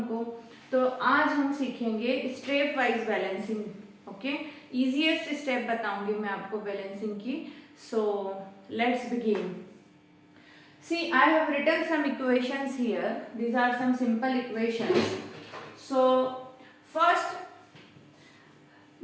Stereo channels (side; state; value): both; identical; correlation 1.00